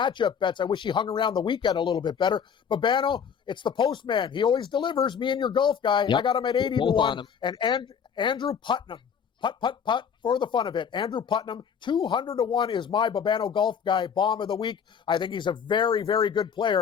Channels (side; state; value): right; quieter; 7.3 dB